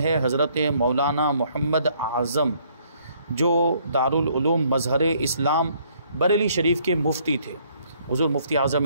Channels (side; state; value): both; inverted; correlation -0.65